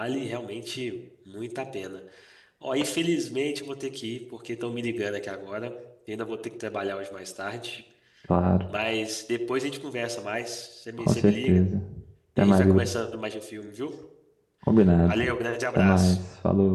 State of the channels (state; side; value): identical; both; correlation 1.00